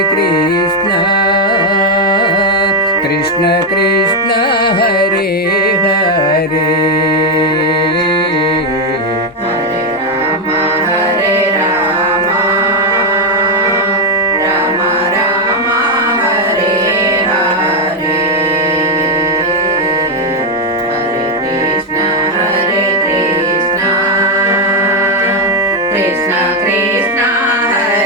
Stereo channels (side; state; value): both; normal; correlation 0.03